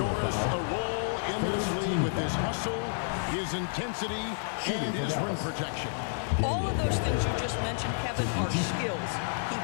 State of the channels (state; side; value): silent; right; digital silence